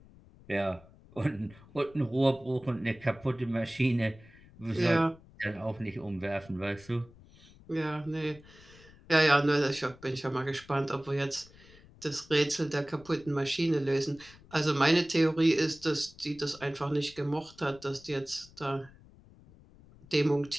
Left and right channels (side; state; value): left; noise; rumble, 24 dB below the sound